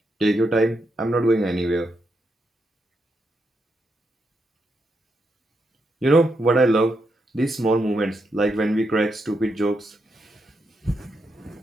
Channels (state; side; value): normal; both; correlation 0.82